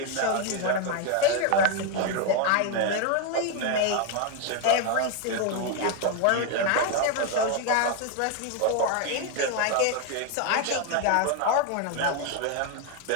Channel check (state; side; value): different; both; correlation 0.01